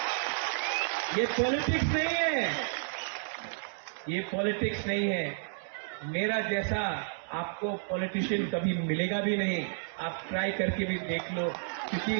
ये पॉलिटिक्स नहीं है, ये पॉलिटिक्स नहीं है. मेरा जैसा आपको पॉलिटिशियन कभी मिलेगा भी नहीं. आप ट्राई करके भी देख लो, क्योंकि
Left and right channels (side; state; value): left; silent; digital silence